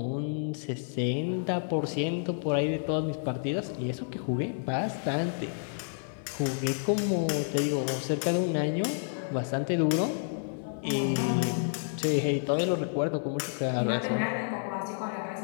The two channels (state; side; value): silent; right; 56 dB below the other